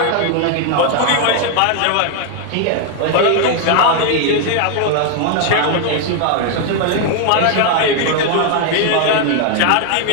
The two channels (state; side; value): different; both; correlation 0.00